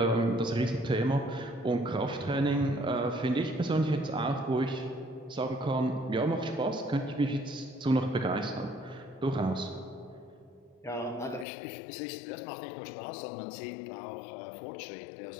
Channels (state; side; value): drops out; right; at 11.5 s